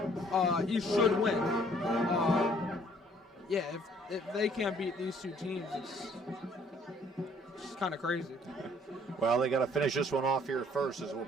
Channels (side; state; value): both; normal; correlation 0.61